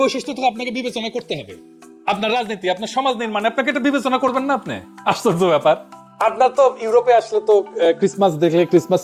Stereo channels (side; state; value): both; identical; correlation 1.00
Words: বৈশিষ্ট্য তো আপনাকে বিবেচনা করতে হবে। আপনার রাজনীতি, আপনার সমাজ নির্মাণে আপনাকে এটা বিবেচনা করবেন না? আপনি আশ্চর্য ব্যাপার। আপনার তো ইউরোপে আসলে তো ক্রিসমাস দেখলে, ক্রিসমাস